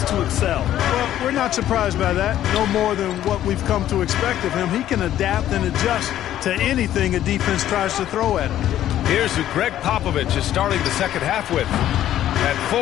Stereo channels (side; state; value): right; quieter; 12.2 dB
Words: to excel. Well, we're not surprised by that. No more than what we've come to expect of him. He can adapt and adjust to anything a defense tries to throw at him. Here's who Greg Popovich is starting the second half with. At